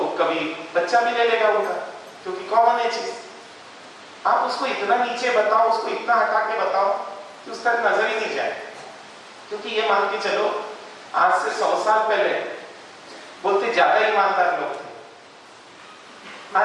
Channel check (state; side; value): identical; both; correlation 1.00